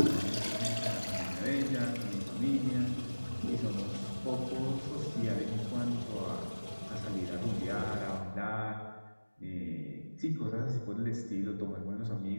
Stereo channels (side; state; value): both; inverted; correlation -1.00